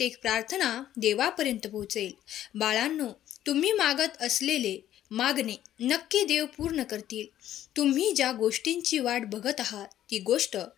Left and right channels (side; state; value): right; quieter; 12.1 dB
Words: प्रार्थना देवापर्यंत पोहोचेल. बाळांनो, तुम्ही मागत असलेले मागणे नक्की देव पूर्ण करतील. तुम्ही ज्या गोष्टींची वाट बघत आहात ती गोष्ट